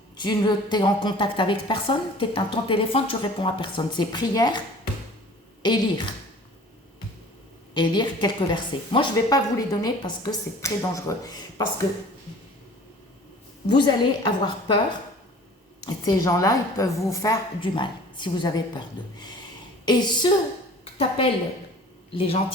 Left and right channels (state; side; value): normal; both; correlation 0.46